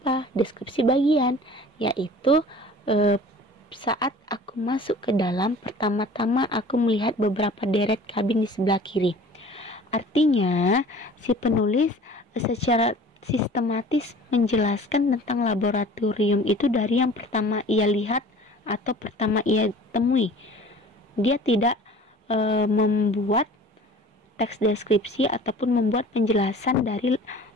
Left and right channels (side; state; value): both; normal; correlation 0.45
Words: Deskripsi bagian, yaitu saat aku masuk ke dalam, pertama-tama aku melihat beberapa deret kabin di sebelah kiri. Artinya si penulis secara sistematis menjelaskan tentang laboratorium itu dari yang pertama ia lihat atau pertama ia temui. Dia tidak membuat teks deskripsi ataupun membuat penjelasan dari